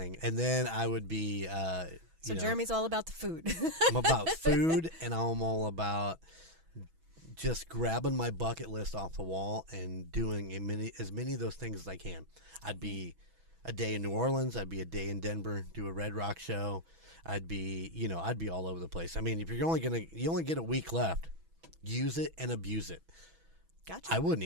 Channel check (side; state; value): left; late; 6.1 ms